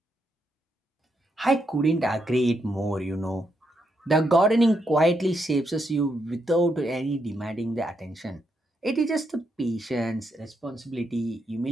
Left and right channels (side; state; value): both; normal; correlation 0.79